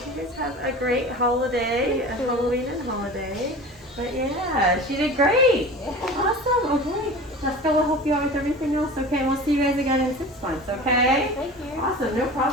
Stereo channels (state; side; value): normal; both; correlation 0.36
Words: you guys have a great holiday, a Halloween and holiday. But yeah, she did great. Awesome. Okay. Jessica will help you out with everything else. Okay, we'll see you guys again in 6 months. Okay. Thank you. Awesome. No